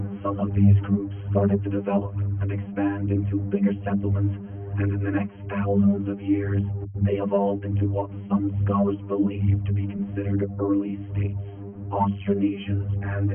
Some of these groups started to develop and expand into bigger settlements, and in the next thousands of years, they evolved into what some scholars believe to be considered early states. Austronesians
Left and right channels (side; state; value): both; identical; correlation 1.00